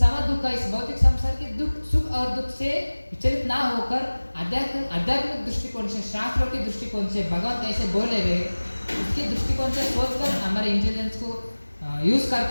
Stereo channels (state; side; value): inverted; both; correlation -1.00